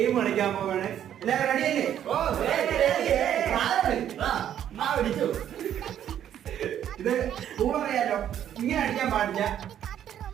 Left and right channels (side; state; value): left; quieter; 10.3 dB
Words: കളിക്കാൻ പോവാണ്. എല്ലാവരും റെഡിയല്ലേ? ഇത് റൂൾ അറിയാലോ, ഇങ്ങനെ അടിക്കാൻ പാടില്ല,